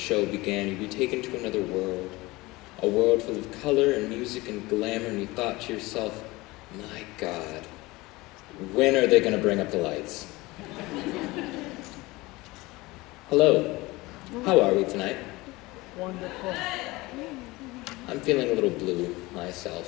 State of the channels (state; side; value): quieter; right; 21.3 dB